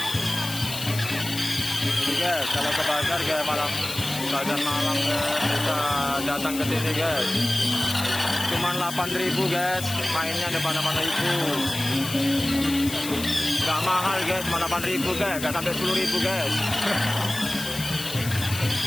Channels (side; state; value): left; noise; hiss, 9 dB below the sound